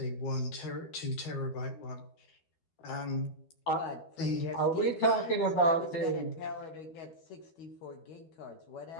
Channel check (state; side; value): late; right; 12 ms